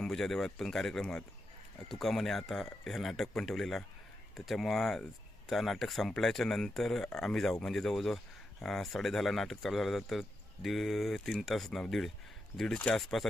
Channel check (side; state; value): both; normal; correlation 0.86